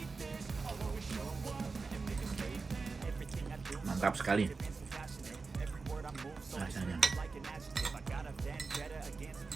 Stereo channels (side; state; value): left; quieter; 4.3 dB